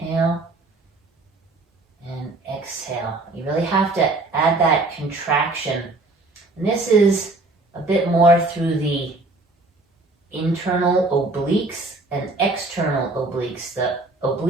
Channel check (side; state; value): left; quieter; 3.1 dB